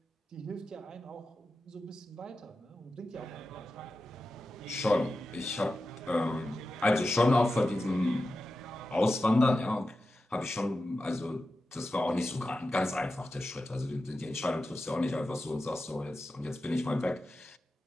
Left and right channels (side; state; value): both; normal; correlation 0.92